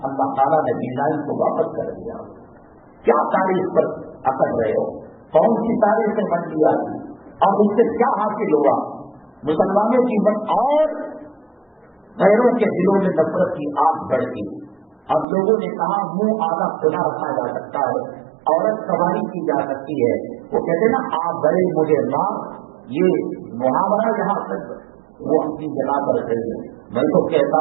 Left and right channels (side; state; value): left; drops out; at 15.2 s